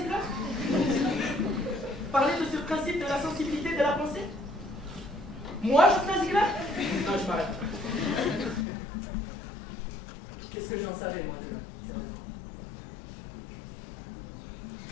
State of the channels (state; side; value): drops out; right; at 8.7 s